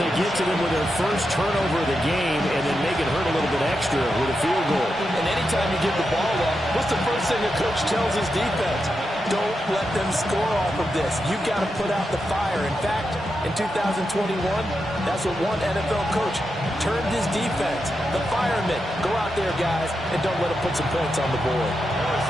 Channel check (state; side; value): normal; both; correlation 0.87